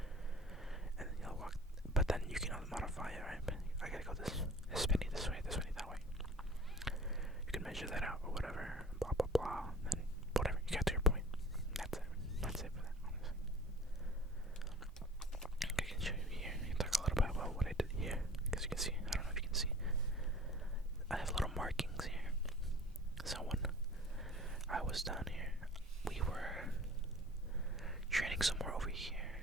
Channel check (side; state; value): both; normal; correlation 0.44